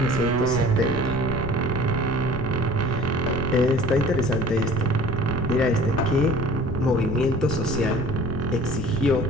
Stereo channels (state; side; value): noise; left; rumble, 6 dB below the sound